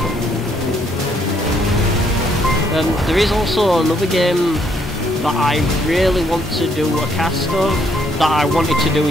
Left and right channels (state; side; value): normal; both; correlation 0.70